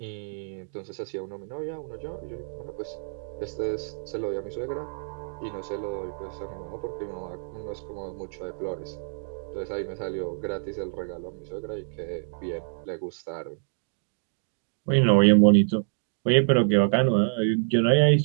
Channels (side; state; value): left; silent; digital silence